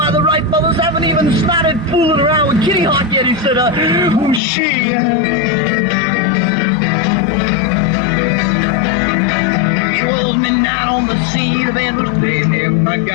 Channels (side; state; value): right; drops out; at 4.4 s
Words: the Wright brothers haven't even started fooling around with Kitty Hawk yet." He said, "Who's she?" Midnight on the sea, the band was playing there. My